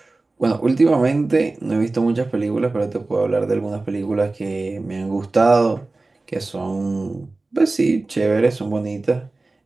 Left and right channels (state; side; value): quieter; left; 3.3 dB